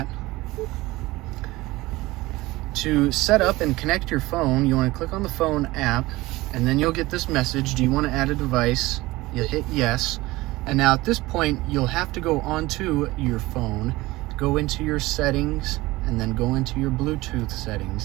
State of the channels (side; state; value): left; quieter; 19.6 dB